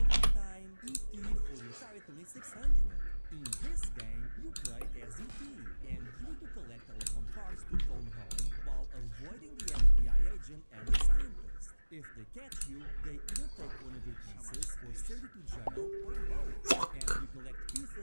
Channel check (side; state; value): both; inverted; correlation -1.00